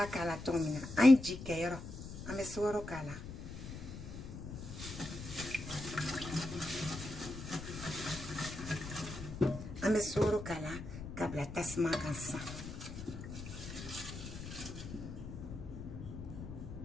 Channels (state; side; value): noise; left; rumble, 10 dB below the sound